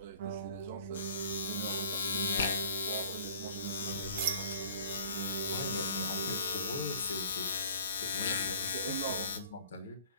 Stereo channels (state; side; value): inverted; both; correlation -0.50